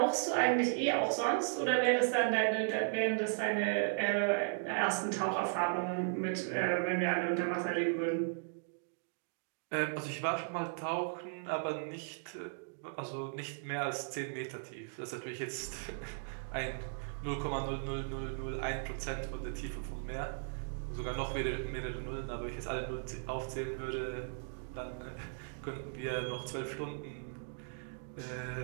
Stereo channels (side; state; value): left; silent; digital silence